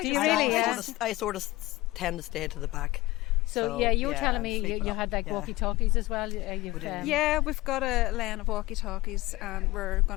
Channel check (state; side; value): quieter; right; 19.0 dB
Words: you just- really? Yeah. I sort of tend to stay to the back. So yeah, you were telling me sweep it you up. had like Yeah. walkie-talkies as well. You've, We did. Yeah, we've got a lane of walkie-talkies, and we're